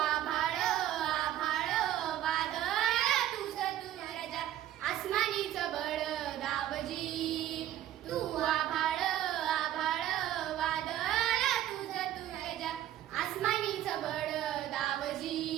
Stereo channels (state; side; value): quieter; left; 12.4 dB